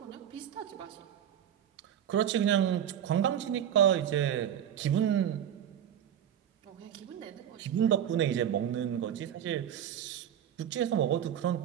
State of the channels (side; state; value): left; quieter; 9.9 dB